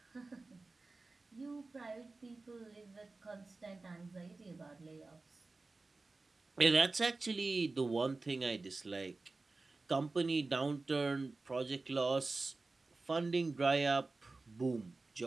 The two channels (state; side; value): quieter; left; 3.5 dB